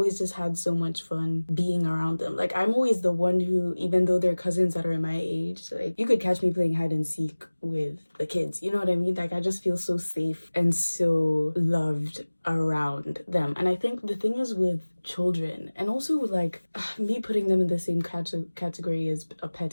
just had so much fun being around them. Like, I'm always the one who, even though they're cousins that are my age, like you could catch me playing hide and seek with the kids, you know what I mean? Like, I just feel so safe and so loved around them. And I think the thing is with children, and also like me putting them in the same category as a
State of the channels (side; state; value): both; inverted; correlation -1.00